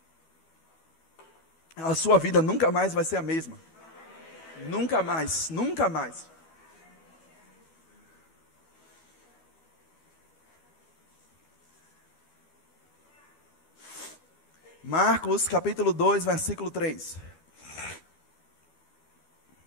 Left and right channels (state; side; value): late; right; 12 ms